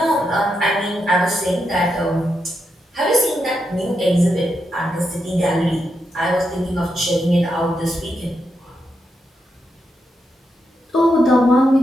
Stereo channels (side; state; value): both; normal; correlation 0.84